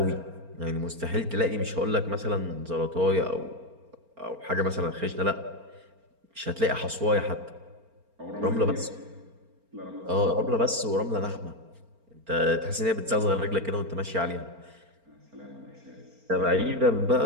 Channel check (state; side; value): late; left; 4.4 ms